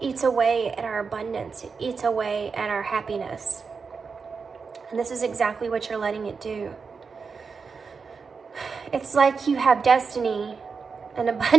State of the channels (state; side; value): quieter; left; 5.2 dB